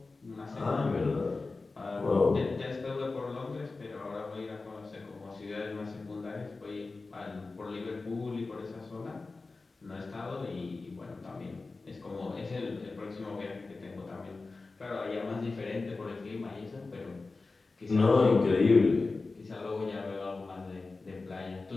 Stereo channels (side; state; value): right; quieter; 3.7 dB